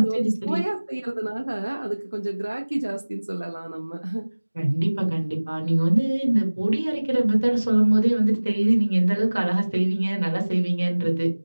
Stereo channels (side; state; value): both; inverted; correlation -1.00